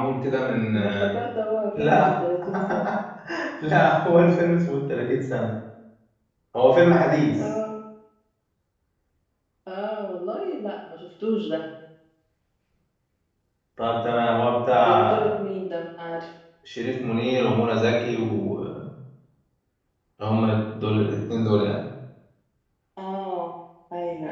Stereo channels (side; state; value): both; identical; correlation 1.00